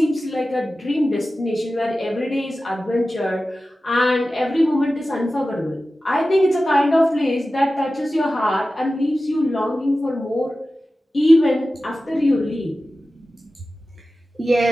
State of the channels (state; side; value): normal; both; correlation 0.95